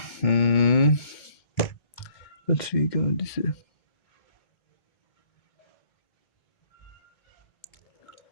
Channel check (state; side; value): late; right; 2.2 ms